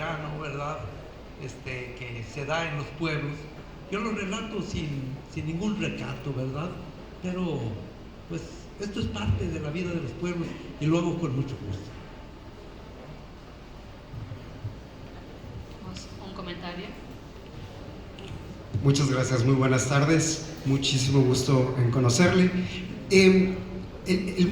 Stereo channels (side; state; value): both; identical; correlation 1.00